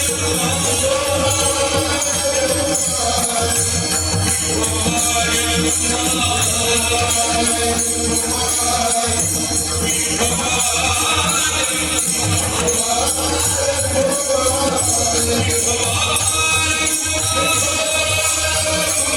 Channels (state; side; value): identical; both; correlation 1.00